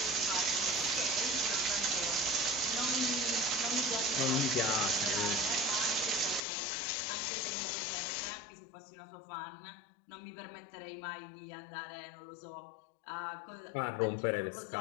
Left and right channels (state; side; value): drops out; right; at 6.4 s